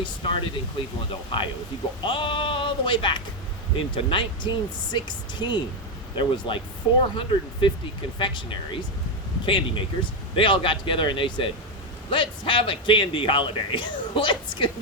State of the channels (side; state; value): both; normal; correlation 0.06